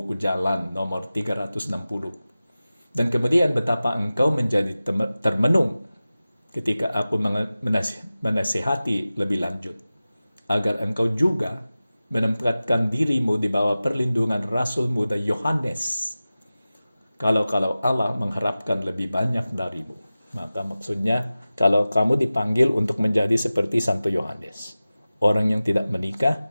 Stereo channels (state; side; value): inverted; both; correlation -0.96